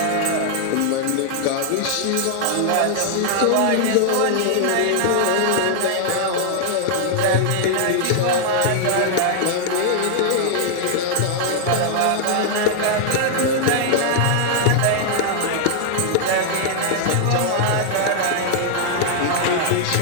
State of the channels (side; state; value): both; different; correlation -0.01